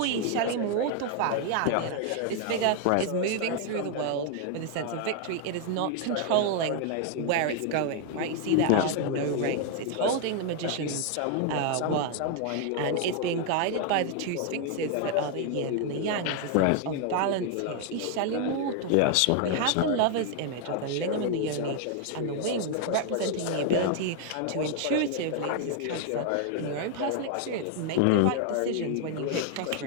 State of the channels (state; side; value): different; both; correlation 0.00